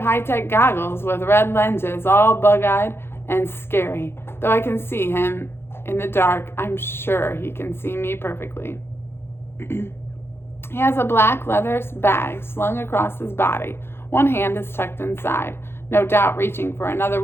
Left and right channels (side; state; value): right; late; 0.11 ms